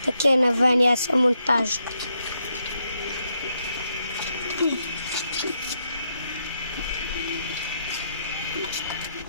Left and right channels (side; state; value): both; inverted; correlation -0.80